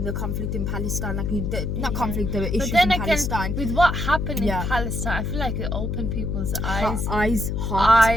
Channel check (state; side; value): noise; left; hum, 1 dB below the sound